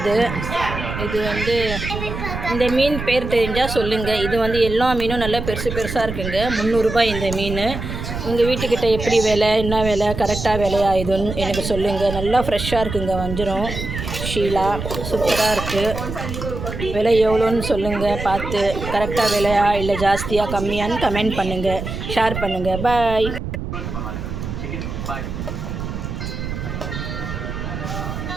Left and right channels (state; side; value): noise; right; rumble, 6 dB below the sound